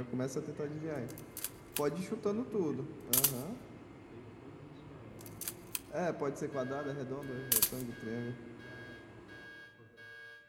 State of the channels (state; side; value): identical; both; correlation 1.00